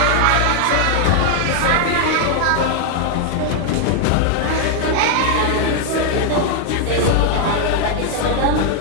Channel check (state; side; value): different; both; correlation 0.00